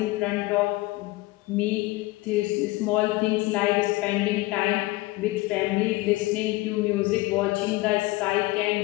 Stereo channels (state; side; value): quieter; right; 20.2 dB